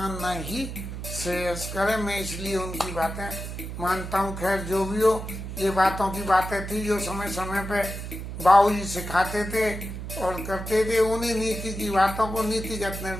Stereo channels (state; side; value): noise; right; hum, 7 dB below the sound